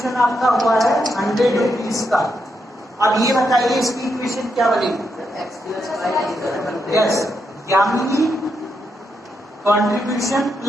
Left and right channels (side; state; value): both; normal; correlation 0.81